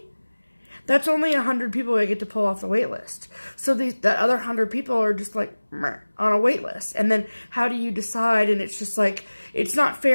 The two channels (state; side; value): inverted; both; correlation -1.00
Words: that's only 100 people I get to pull off the wait list. So the other 100 people are just on a wait list. And then how do you decide? And it's just it's not